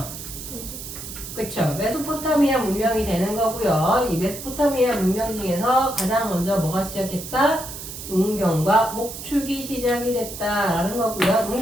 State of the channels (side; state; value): right; noise; hiss, 10 dB below the sound